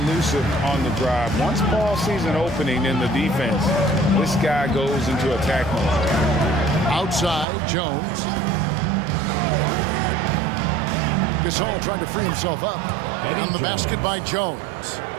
elusive on the drive. Once Paul sees an opening in the defense, this guy goes into attack mode. Outside, Jones. Gasol trying to free himself up. On the basket by Jones.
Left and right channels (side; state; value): left; drops out; at 7.5 s